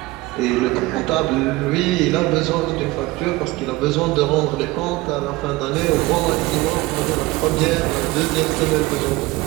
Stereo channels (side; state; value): left; quieter; 20.3 dB